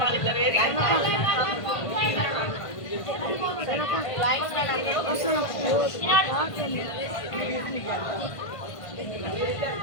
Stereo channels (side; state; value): right; late; 1.5 ms